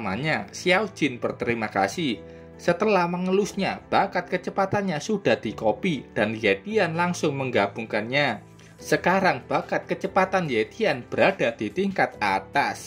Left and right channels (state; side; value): identical; both; correlation 1.00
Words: Xiao Jin berterima kasih. Setelah mengelusnya, bakat kecepatannya sudah dikopi dan Yetian langsung menggabungkannya. Sekarang bakat kecepatan Yetian berada di tingkat